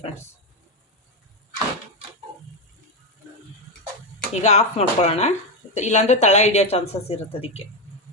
ಫ್ರೆಂಡ್ಸ್. ಈಗ ಆಫ್ ಮಾಡ್ಕೊಳ್ಳೋಣ, ಇಲ್ಲಾಂದರೆ ತಳ ಹಿಡಿಯೋ ಚಾನ್ಸಸ್ ಇರುತ್ತೆ ಅದಕ್ಕೆ.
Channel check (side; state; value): both; normal; correlation 0.09